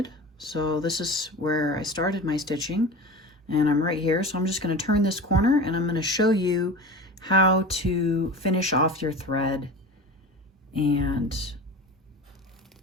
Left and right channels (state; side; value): normal; both; correlation 0.32